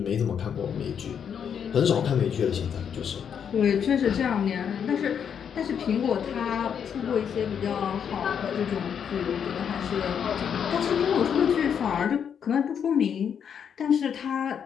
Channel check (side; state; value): right; quieter; 7.8 dB